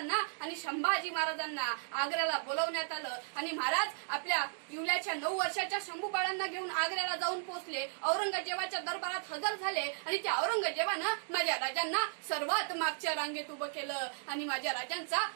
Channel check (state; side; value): silent; left; digital silence